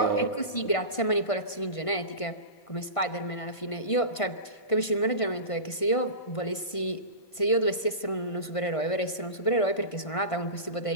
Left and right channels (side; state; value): right; late; 1.5 ms